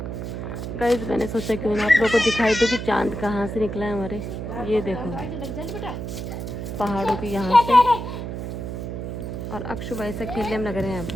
Guys मैंने सोचा कि मैं आप लोगों को दिखाई दूँ कि चाँद कहाँ से निकला है हमारे। ये देखो पहाड़ों की यहाँ से। और अक्षु भाई से खेलने में लग रहे हैं यहाँ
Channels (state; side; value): noise; right; hum, 6 dB below the sound